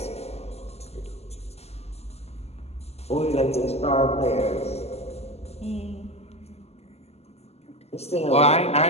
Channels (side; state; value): right; late; 0.30 ms